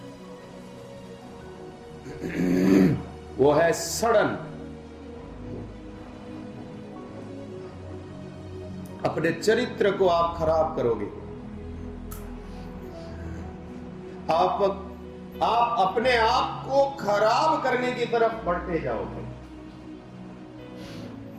वो है सड़न। अपने चरित्र को आप खराब करोगे। आप अपने आप को खराब करने की तरफ बढ़ते जाओगे।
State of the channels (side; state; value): both; identical; correlation 1.00